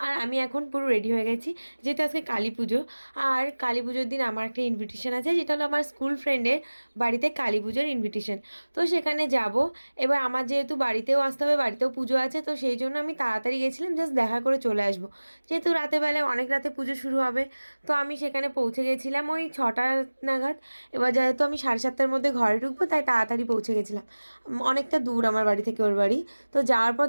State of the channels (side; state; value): both; inverted; correlation -1.00